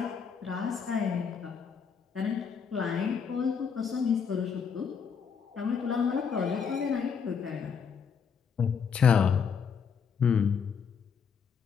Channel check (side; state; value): right; quieter; 6.5 dB